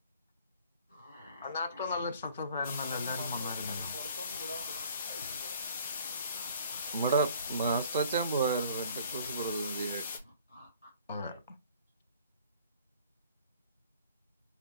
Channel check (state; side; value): inverted; both; correlation -0.54